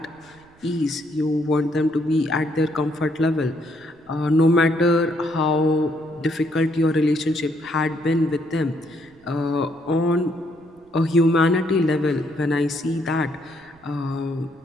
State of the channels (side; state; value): right; noise; rumble, 30 dB below the sound